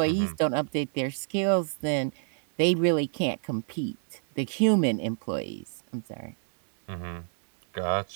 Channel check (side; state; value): left; silent; digital silence